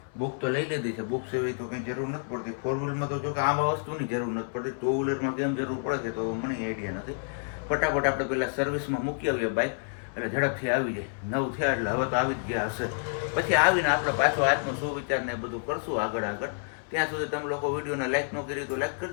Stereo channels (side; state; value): right; silent; 59 dB below the other